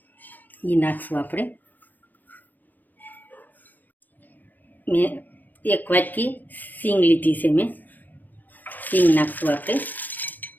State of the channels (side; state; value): right; late; 0.085 ms